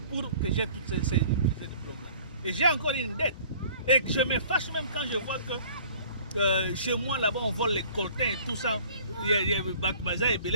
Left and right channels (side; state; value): both; inverted; correlation -0.50